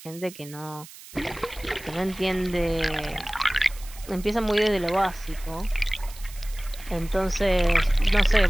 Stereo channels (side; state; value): right; noise; hiss, 18 dB below the sound